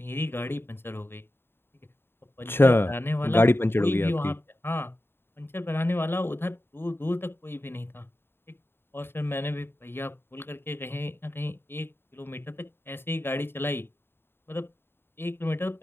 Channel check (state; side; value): late; right; 0.11 ms